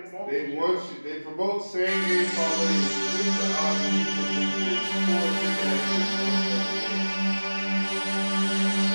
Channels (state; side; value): inverted; both; correlation -1.00